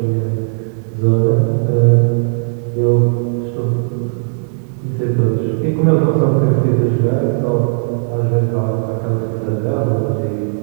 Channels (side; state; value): left; silent; digital silence